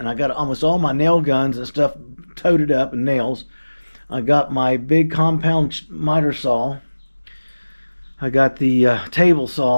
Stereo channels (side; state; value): both; inverted; correlation -1.00